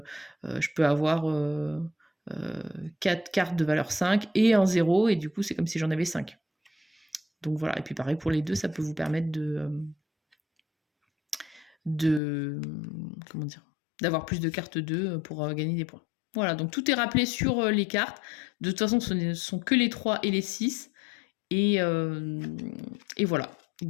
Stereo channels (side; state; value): right; drops out; at 12.2 s